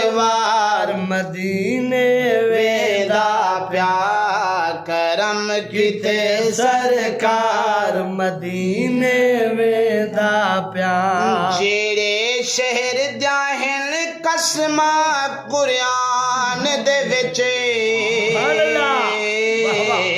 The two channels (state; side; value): identical; both; correlation 1.00